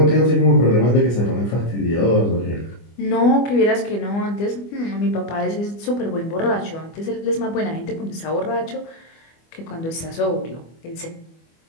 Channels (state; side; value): late; right; 25 ms